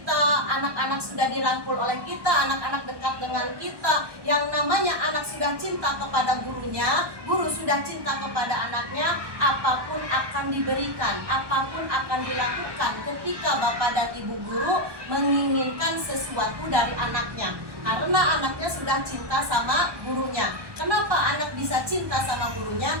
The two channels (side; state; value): left; late; 1.2 ms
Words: anak-anak sudah dirangkul oleh kita, anak-anak dekat dengan kita, yang namanya anak sudah cinta kepada gurunya, guru sudah cinta kepada anaknya, apapun akan diberikan, apapun akan dilakukan ketika Bapak dan Ibu guru menginginkan sesuatu dari anaknya. Karena anaknya sudah cinta sama gurunya. Kenapa anak bisa cinta sama